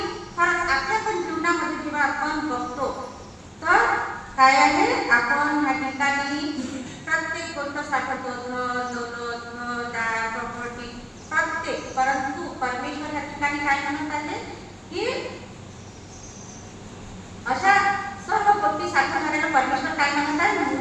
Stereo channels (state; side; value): identical; both; correlation 1.00